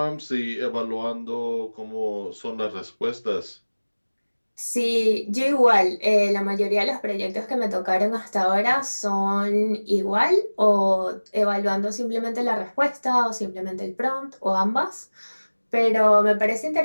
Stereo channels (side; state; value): both; inverted; correlation -1.00